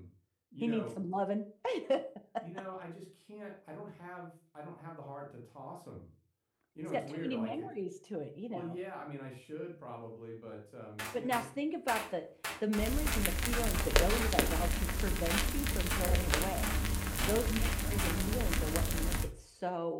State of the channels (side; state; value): both; identical; correlation 1.00